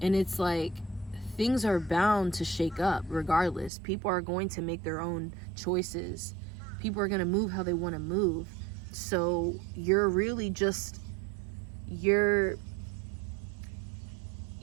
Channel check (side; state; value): left; drops out; at 3.7 s